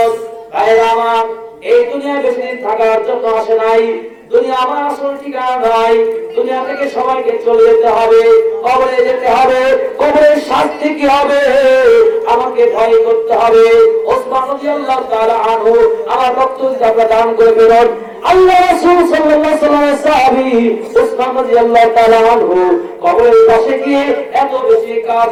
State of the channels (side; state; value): both; identical; correlation 1.00